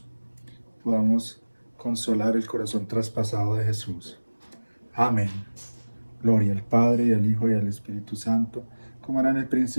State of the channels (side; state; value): both; inverted; correlation -1.00